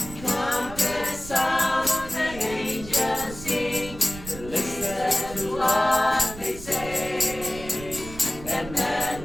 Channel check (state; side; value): noise; right; rumble, 14 dB below the sound